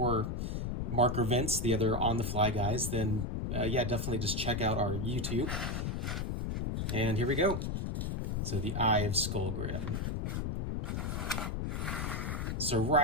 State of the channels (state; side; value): noise; left; rumble, 1 dB below the sound